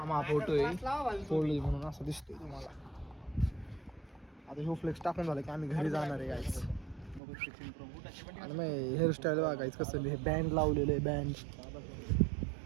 मा फोटो आहे फोल्ड म्हणून असं दिसतोय तुम्हाला आता ह्यो फ्लेक्स टाकून झालं की आम्ही घरी जाणार आहे गाईस आणि मग हेअरस्टाईल बघायचं कसं हे बँड लावलेलं आहे बँड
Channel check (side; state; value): left; drops out; at 7.2 s